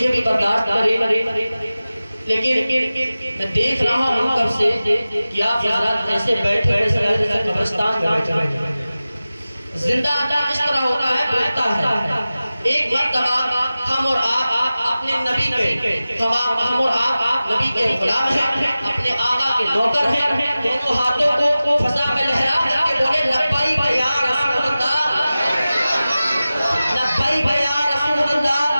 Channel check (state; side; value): inverted; both; correlation -0.96